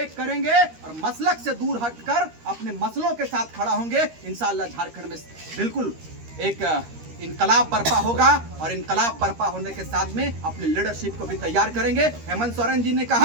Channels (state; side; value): late; left; 13 ms